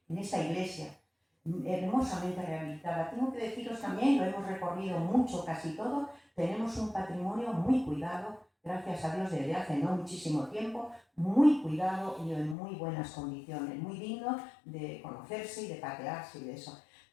en esta iglesia hermosamente rehabilitada. Tengo que deciros también, lo hemos recorrido mucho, casi todo, tenemos un patrimonio muy cuidado, gracias a Dios desde hace no muchísimo tiempo, muy cuidado y en muy buenas condiciones, muy digno de conocerse y de patearse y de eso.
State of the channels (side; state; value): right; drops out; at 12.6 s